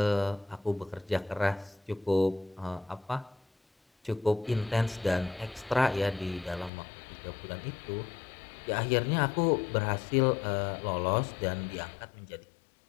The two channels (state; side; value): drops out; right; at 6.7 s